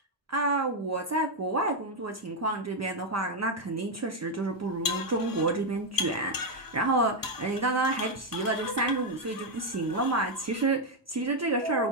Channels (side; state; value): both; normal; correlation 0.03